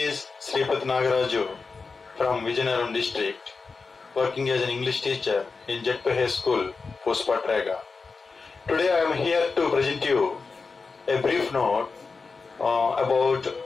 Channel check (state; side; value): quieter; right; 4.5 dB